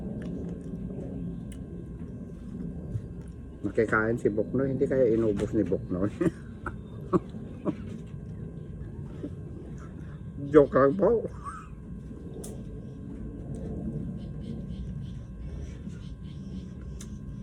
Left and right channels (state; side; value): identical; both; correlation 1.00